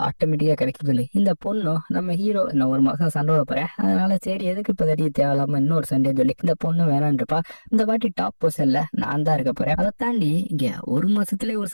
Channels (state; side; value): inverted; both; correlation -1.00